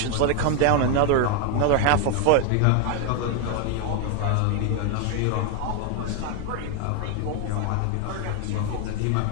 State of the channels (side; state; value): both; different; correlation 0.01